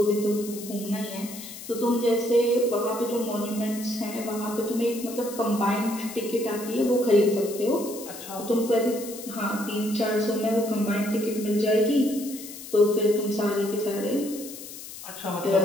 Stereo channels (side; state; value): left; noise; hiss, 13 dB below the sound